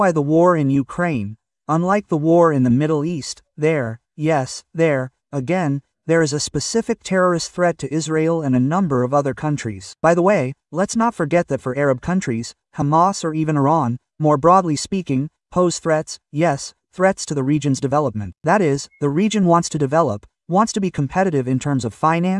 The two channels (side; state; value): both; identical; correlation 1.00